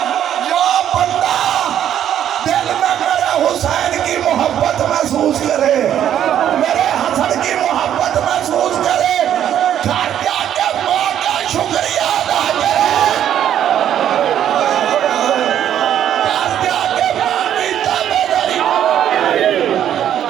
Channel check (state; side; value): quieter; left; 10.4 dB